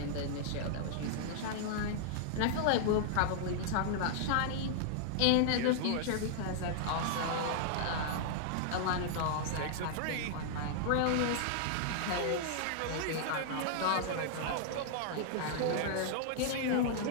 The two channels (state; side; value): different; both; correlation -0.01